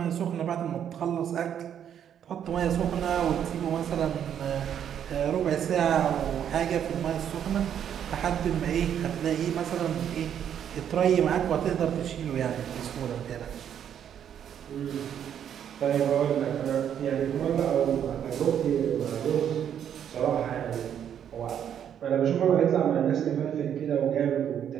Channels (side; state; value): left; quieter; 9.2 dB